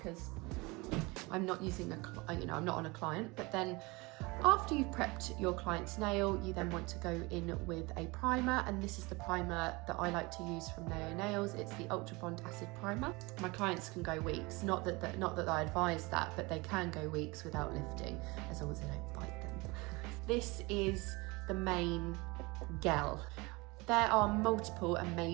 I'm not using I'm not on a client, but then after you've prepped your client's nail, you then want to go in with a primer, and this is the primer that I like to use from Naio Nails. It's the Ultra Bond Acid Primer. My clients can go weeks, not that I advise that, but they can go weeks without lifting, as long as they don't bite them. This is the main gel. There are multiple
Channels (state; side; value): quieter; left; 24.8 dB